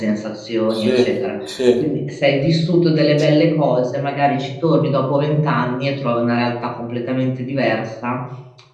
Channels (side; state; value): both; identical; correlation 1.00